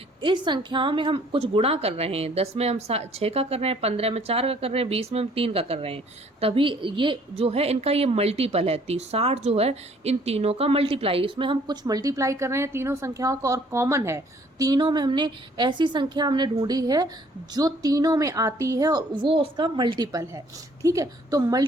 इस संख्याओं में हम कुछ गुणा कर रहे हैं, 10 में हम 6 का कर रहे हैं, 15 में 4 का कर रहे हैं, 20 में हम 3 का कर रहे हैं, तभी ये जो है इनका ये मल्टीपल है। 60 जो है इन तीनों का मल्टीप्लाई, इसमें हम कुछ मल्टीप्लाई कर रहे हैं तीनों संख्याओं का, और कॉमन है तीनों में। हमने ऐसी संख्या हमने ढूंढी है जो तीनों में आती है और वो उसका मल्टीपल है। ठीक है, तो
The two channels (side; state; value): both; normal; correlation 0.60